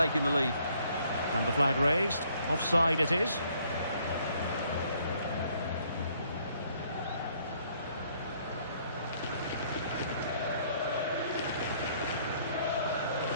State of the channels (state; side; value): inverted; both; correlation -0.65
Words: the lead. And the flag raised. Offside it is.